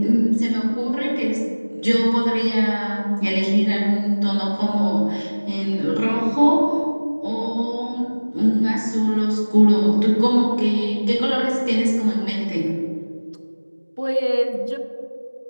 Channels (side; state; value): both; inverted; correlation -1.00